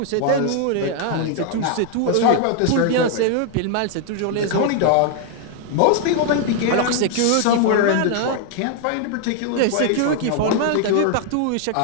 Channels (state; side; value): different; both; correlation 0.00